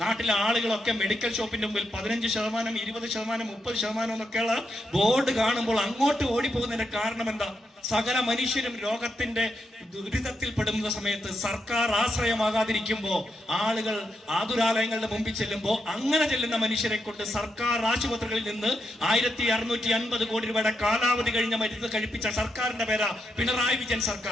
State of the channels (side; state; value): both; normal; correlation 0.83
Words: ആളുകളൊക്കെ മെഡിക്കൽ ഷോപ്പിന്റെ മുമ്പിൽ 15%, 20%, 30% എന്നൊക്കെയുള്ള ബോർഡ് കാണുമ്പോൾ അങ്ങോട്ട് ഓടിപ്പോകുന്നതിന്റെ കാരണം എന്താ? സകല മനുഷ്യരും രോഗത്തിന്റെ ദുരിതത്തിൽ പെടുന്ന സമയത്ത് സർക്കാർ ആശ്രയമാകാതിരിക്കുമ്പോ ആളുകൾ ആതുരാലയങ്ങളുടെ മുമ്പിൽ ചെല്ലുമ്പോൾ അങ്ങനെ ചെല്ലുന്ന മനുഷ്യരെ കൊണ്ട് സർക്കാർ ആശുപത്രികളിൽ നിന്ന് 1650 കോടി രൂപയുടെ കാലാവധി കഴിഞ്ഞ മരുന്ന് കഴിപ്പിച്ച സർക്കാരിന്റെ പേരാ പിണറായി വിജയൻ